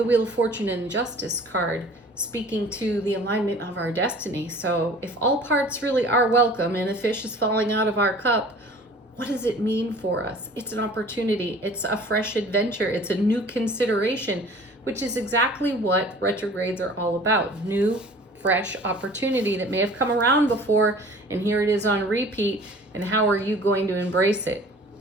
Wheel of Fortune and Justice card speaking to the alignment of our destiny. So if all parts really are welcome and a fish is falling out of our cup, what does it mean for us? It's an opportunity. It's a fresh adventure. It's a new consideration, which is exactly what retrogrades are all about. New, fresh opportunity that may have come around before, and here it is on repeat. And how are you going to embrace it?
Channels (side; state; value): both; normal; correlation 0.47